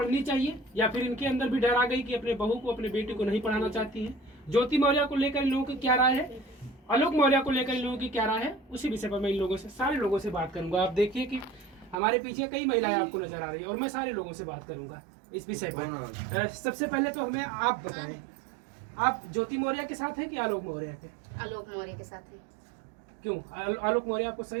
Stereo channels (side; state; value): left; drops out; at 12.0 s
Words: चाहिए, या फिर इनके अंदर भी डर आ गई कि अपने बहू को अपने बेटी को नहीं पढ़ाना चाहती हैं। ज्योति मौर्य को लेकर इन लोगों की क्या राय है, आलोक मौर्य को लेकर इन लोगों की क्या राय है, उसी विषय पर मैं इन लोगों से सारे लोगों से बात करूंगा। आप देखिए कि हमारे पीछे कई महिलाएं आपको नजर आ रही है और मैं सारे लोगों से बात करूंगा इस विषय पर। सबसे पहले तो हमें आप बताएं, आप ज्योति मौर्य के साथ हैं कि आलोक मौर्य के? आलोक मौर्य के साथ हैं। क्यों आलोक मौर्य आपको